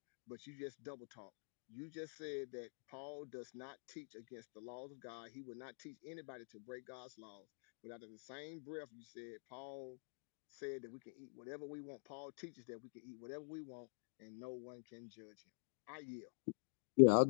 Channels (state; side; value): silent; right; digital silence